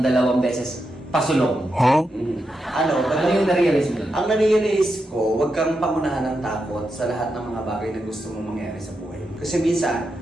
2 beses pasulong. Ano yung na-realize mo yun? Ang na-realize ko, huwag kang pangunahan ng takot sa lahat ng mga bagay na gusto mong mangyari sa buhay. Kasi minsan,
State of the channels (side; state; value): both; normal; correlation 0.86